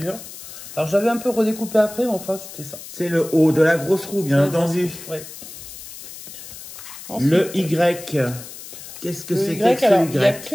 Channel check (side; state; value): left; noise; hiss, 14 dB below the sound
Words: Alors, j'avais un peu redécoupé après, mais enfin, c'était ça. C'est le O de la grosse roue, bien entendu. Ouais. Ensuite, le Y. Qu'est-ce que c'est que ce Y?